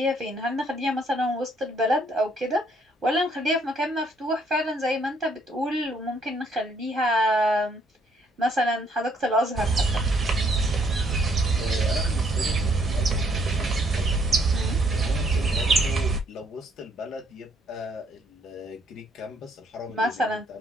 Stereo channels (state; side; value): normal; both; correlation 0.68